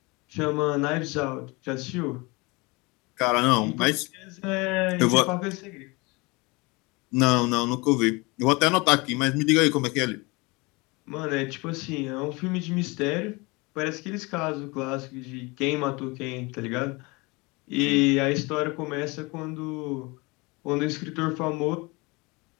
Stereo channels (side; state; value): right; quieter; 25.9 dB